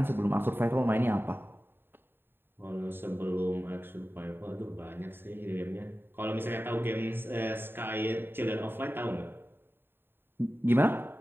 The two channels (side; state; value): left; late; 0.10 ms